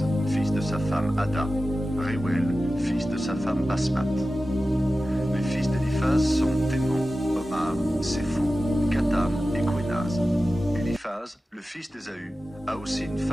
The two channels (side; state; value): both; normal; correlation 0.94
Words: fils de sa femme Ada. Réouel, fils de sa femme Basmat. Les fils d'Éliphaz sont Témon, Omar, Sépho, Gatam et Quénaz. Éliphaz, le fils d'Ésaü, a aussi une